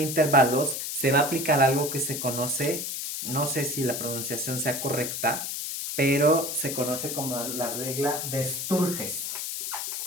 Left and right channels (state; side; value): noise; left; hiss, 4 dB below the sound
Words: intervalos, se va a aplicar algo que se conoce no sé si la pronunciación sea correcta, pero se conoce como la regla de Sturges.